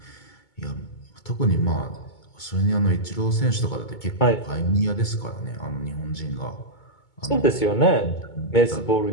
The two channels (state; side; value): late; right; 2.2 ms